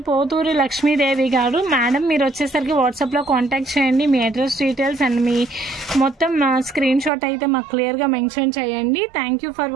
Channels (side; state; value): left; drops out; at 7.1 s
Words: పోతూరి లక్ష్మీదేవి గారు. మేడం మీరు వచ్చేసరికి వాట్సాప్లో కాంటాక్ట్ చేయండి, మీ అడ్రస్ డీటెయిల్స్ అండ్ మీ మొత్తం స్క్రీన్ షాట్ అయితే మాకు క్లియర్గా మెన్షన్ చేయండి. థ్యాంక్ యూ ఫర్